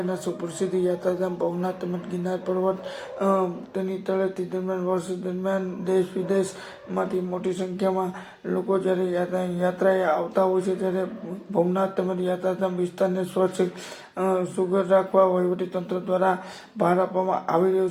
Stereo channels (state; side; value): identical; both; correlation 1.00